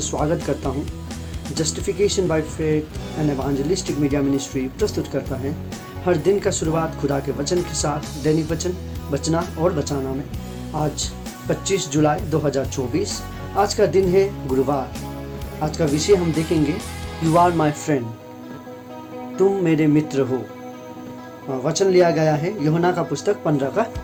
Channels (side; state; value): both; identical; correlation 1.00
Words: स्वागत करता हूँ। Justification by faith and evangelistic media ministry प्रस्तुत करता है हर दिन का शुरुआत खुदा के वचन के साथ, दैनिक वचन बचना और बचाना में। आज 25 जुलाई 2024, आज का दिन है गुरुवार। आज का विषय हम देखेंगे, यू आर माई फ्रेंड, तुम मेरे मित्र हो। वचन लिया गया है यूहन्ना का पुस्तक 15 का